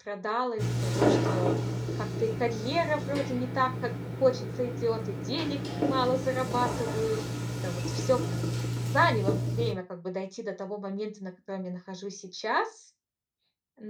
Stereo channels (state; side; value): identical; both; correlation 1.00